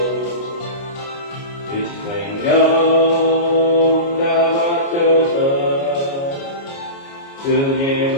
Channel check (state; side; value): late; right; 29 ms